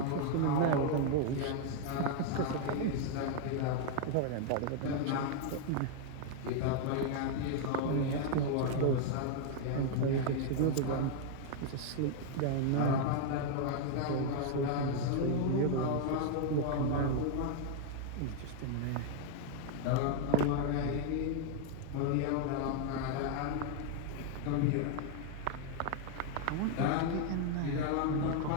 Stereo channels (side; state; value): both; different; correlation 0.00